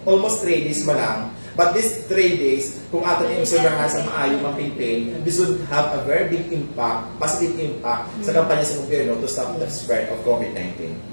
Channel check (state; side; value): inverted; both; correlation -1.00